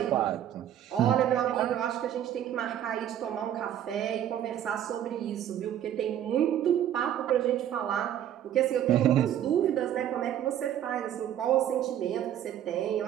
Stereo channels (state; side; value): quieter; left; 10.7 dB